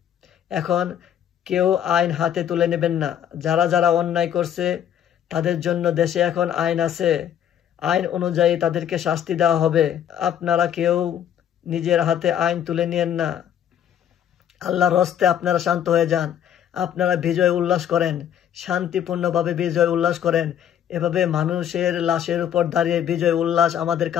এখন কেউ আইন হাতে তুলে নেবেন না। যারা অন্যায় করছে, তাদের জন্য দেশে এখন আইন আছে। আইন অনুযায়ী তাদেরকে শাস্তি দেওয়া হবে। আপনারা কেউ নিজের হাতে আইন তুলে নিয়েন না। আল্লাহর হস্তে আপনারা শান্ত হয়ে যান। আপনারা বিজয় উল্লাস করেন, শান্তিপূর্ণভাবে বিজয় উল্লাস করেন। এভাবে মানুষের লাশের উপর দাঁড়িয়ে বিজয় উল্লাস আমাদের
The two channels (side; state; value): right; quieter; 9.8 dB